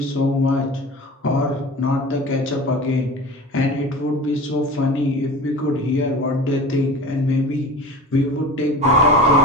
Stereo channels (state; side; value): normal; both; correlation 0.35